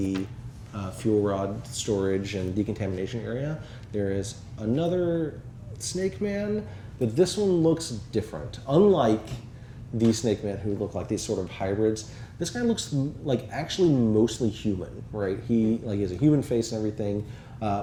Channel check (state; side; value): identical; both; correlation 1.00